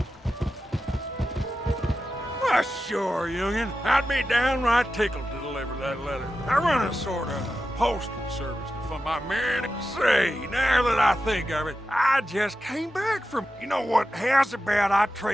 Why, sure, youngin'. I'd be downright tickled to deliver that letter. I run a sort of postal service to fund my men. Say, now that I think of it, I just came back from... You know what? How's about I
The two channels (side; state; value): both; normal; correlation 0.91